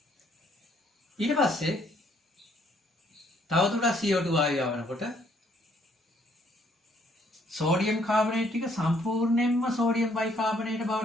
ඊට පස්සේ තවදුරටත් CO2 වායුව යවනකොට සෝඩියම් කාබනේට් ටික සම්පූර්ණයෙන්ම සෝඩියම් බයිකාබනේට්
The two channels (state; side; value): normal; both; correlation 0.66